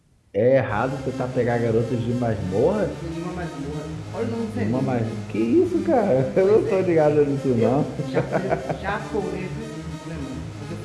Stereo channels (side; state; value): both; identical; correlation 1.00